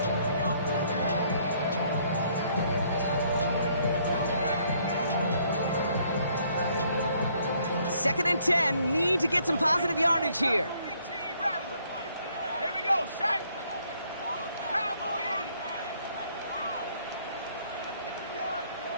Second and 10, need to get some positive yardage here. Here we go, Shaq. Cowboy 80.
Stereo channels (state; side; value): inverted; both; correlation -0.66